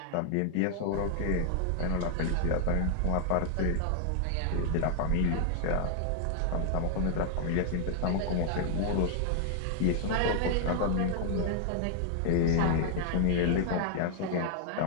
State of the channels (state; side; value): different; both; correlation 0.00